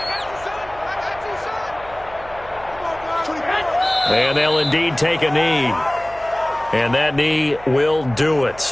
And they'll indeed take a knee. And that knee will do it.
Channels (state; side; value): noise; right; hum, 20 dB below the sound